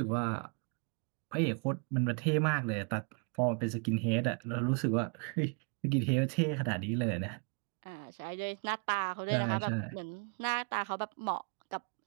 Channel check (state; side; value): quieter; left; 38.3 dB